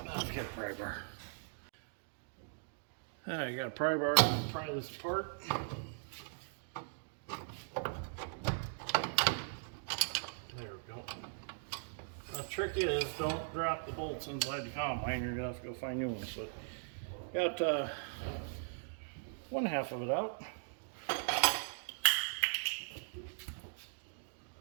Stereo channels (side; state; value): left; silent; digital silence